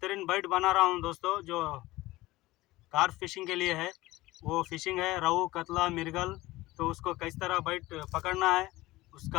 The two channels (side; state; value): right; quieter; 18.6 dB